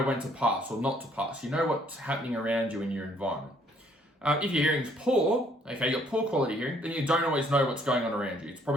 when to pass or not to pass. You know what's happening around you in your environment. If your hearing's poor, you've got poor quality hearing, then you don't always know what's going on around you. It's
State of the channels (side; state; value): both; normal; correlation 0.64